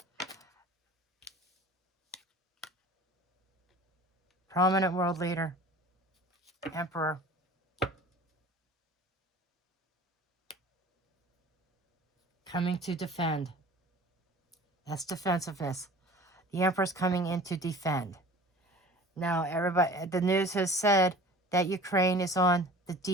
Prominent world leader, emperor. coming to defend. That's defensiveness. The Emperor's coming in to defend. Now, everybody, the news has said that Ukraine is on the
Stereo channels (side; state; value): both; normal; correlation 0.43